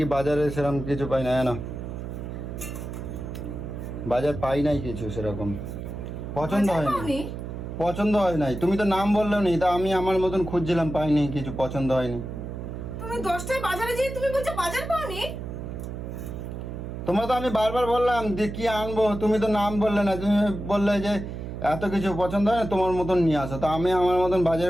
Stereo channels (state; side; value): noise; right; hum, 7 dB below the sound